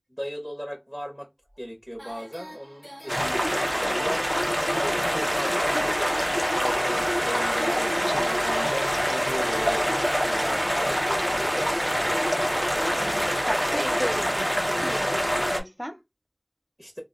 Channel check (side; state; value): both; identical; correlation 1.00